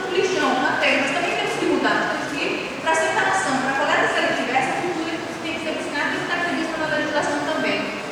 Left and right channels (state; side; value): identical; both; correlation 1.00